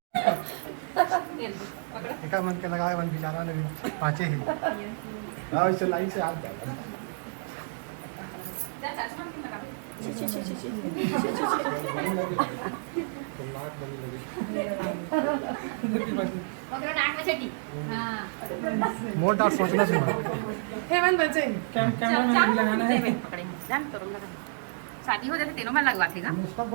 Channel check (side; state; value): left; silent; digital silence